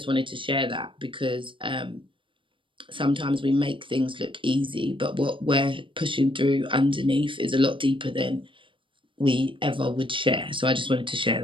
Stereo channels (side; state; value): left; late; 0.25 ms